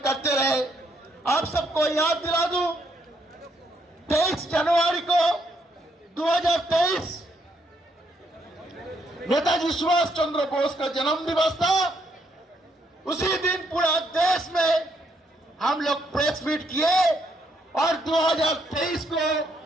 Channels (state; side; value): normal; both; correlation 0.73